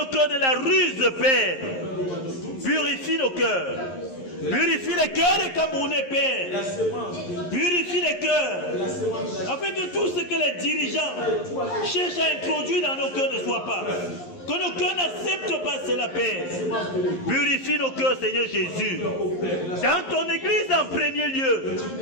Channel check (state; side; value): late; right; 11 ms